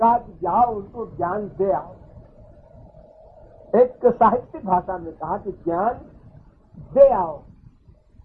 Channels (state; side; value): identical; both; correlation 1.00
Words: कि जाओ उनको ज्ञान दे आओ। एक साहित्यिक भाषा में कहा कि ज्ञान दे आओ,